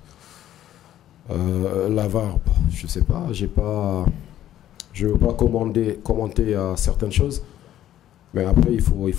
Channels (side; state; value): right; quieter; 12.2 dB